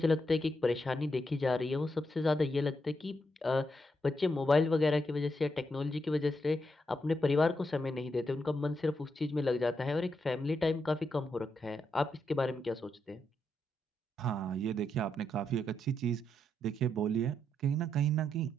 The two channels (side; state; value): both; normal; correlation 0.81